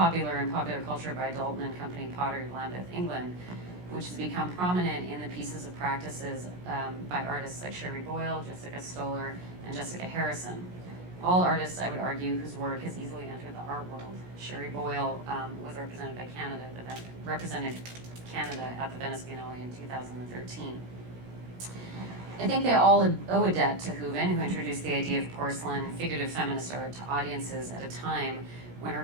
in popular culture by Dalton and Company Pottery of Lambeth, England, which has become prominent in the pieces of practices by artists like Sherry Boyle, Jessica Stoller, and Jessica Harrison. All artists, I would argue, whose work has easily entered the art world. Sherry Boyle was represented by Canada, represented Canada at the Venice Biennale in 2013. I think they all owe a debt to Hooven, who introduced the idea of porcelain figurative feminist art to audiences at a time when her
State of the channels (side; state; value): left; late; 17 ms